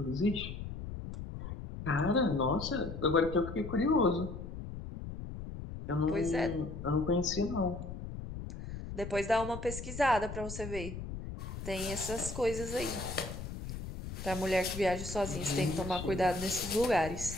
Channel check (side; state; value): left; noise; rumble, 8 dB below the sound